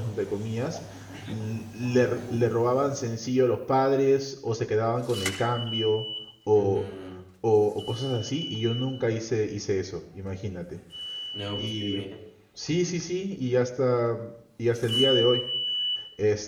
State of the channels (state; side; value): identical; both; correlation 1.00